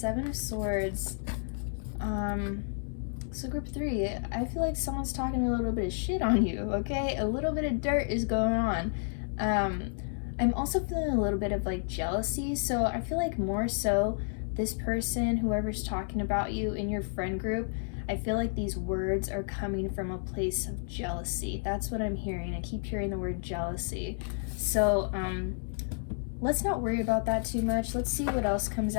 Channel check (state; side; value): silent; right; digital silence